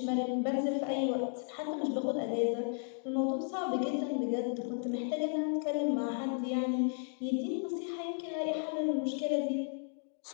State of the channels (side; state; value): right; silent; 55 dB below the other